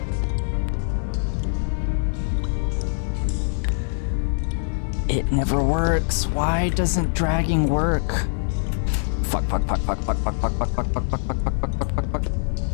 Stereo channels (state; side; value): silent; right; digital silence